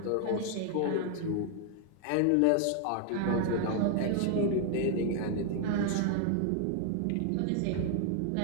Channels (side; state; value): both; different; correlation 0.00